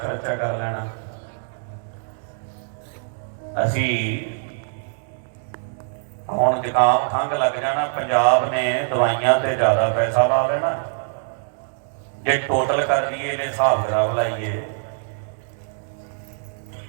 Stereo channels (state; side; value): silent; left; digital silence